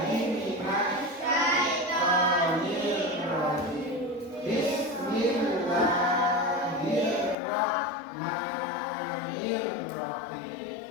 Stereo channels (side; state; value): right; drops out; at 7.4 s